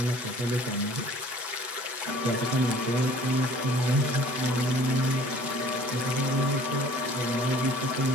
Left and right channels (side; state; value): left; late; 8.1 ms